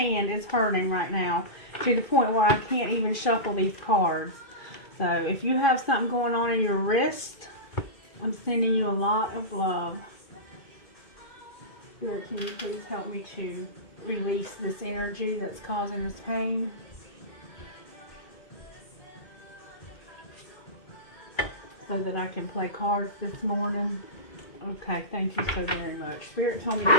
is hurting right now to the point where I can't even shuffle these cards. So if you have something going on in your wrist, I'm sending you a lot of love. Spirit, can you please help me to release this energy that's causing this pain? So that I can play cards this morning. Okay, thank you so very much. Spirit told me to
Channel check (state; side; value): late; right; 2.5 ms